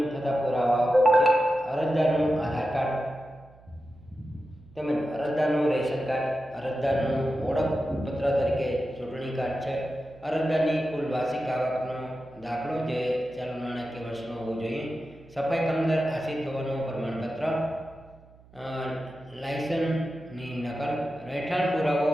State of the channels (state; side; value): noise; right; hum, 25 dB below the sound